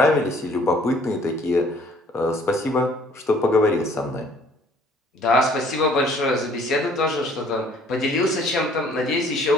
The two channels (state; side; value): normal; both; correlation 0.57